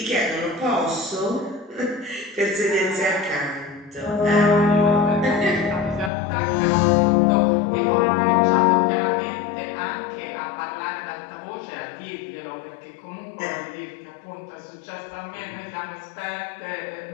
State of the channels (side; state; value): right; drops out; at 6.1 s